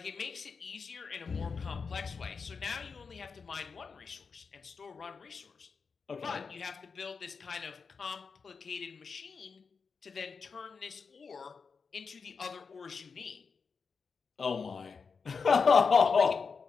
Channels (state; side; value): quieter; right; 5.3 dB